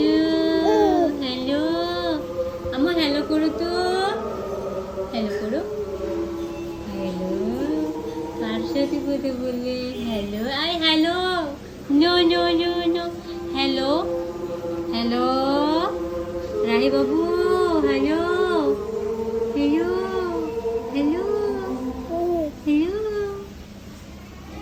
হ্যালো, আমার হ্যালো করো তো। হ্যালো করো। হ্যালো, কার সাথে কথা বললে? Hello, I hello. No no no no. Hello, hello, Rahi বাবু। Hello, hello, hello, hello.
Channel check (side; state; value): both; identical; correlation 1.00